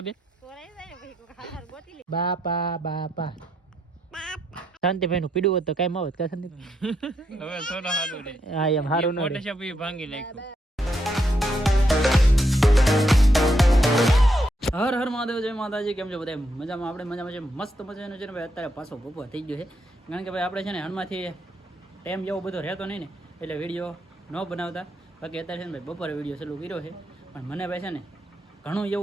બાપા શાંતિભાઈ નું પીડું હોત તો કઈ આવત કા શાંતિભાઈ. હવે થોડો હારું રે. હા એમ હારું ન રે. ફોટોશોપ ઈ ભાંગી નાખ્યું. હર હર મહાદેવ, જય માતાજી. કેમ છો બધા? મજામાં? આપણે મજામાં છે, મસ્ત મજાનું છે ને ભાઈ. અત્યારે પાછો બપોર થઈ ગયો છે, કારણ કે ભાઈ આપણે છે ને હણમાંથી ટાઈમ જેવો બધો રહેતો નહીં ને, એટલે વિડીયો ન બનાવતા. બાકી અત્યારે છે ને ભાઈ બપોરે વિડીયો ચાલુ કર્યો છે, પણ મને ભાઈ છે ને ઘણું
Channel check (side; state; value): both; normal; correlation 0.79